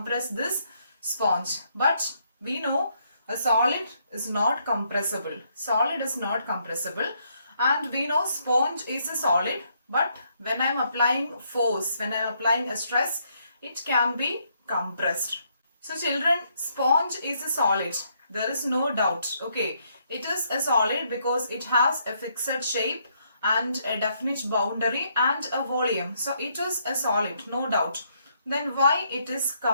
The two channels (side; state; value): both; inverted; correlation -0.73